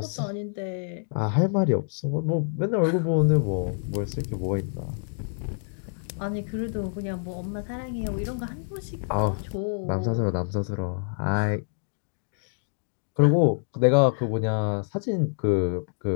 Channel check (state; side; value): silent; right; digital silence